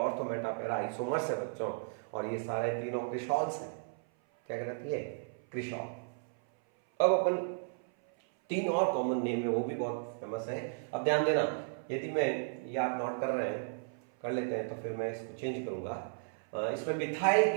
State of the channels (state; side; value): silent; left; 55 dB below the other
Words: मेटा पैरा आइसोमर्स है बच्चों। और ये सारे तीनों क्रिसॉल्स हैं, क्या कहलाती है, क्रिसॉल। अब अपन 3 और कॉमन नेम है, वो भी बहुत फेमस है। अब ध्यान देना, यदि मैं ये आप नोट कर रहे हैं, कर लेते हैं, तो फिर मैं इसको चेंज करूंगा। इसमें मिथाइल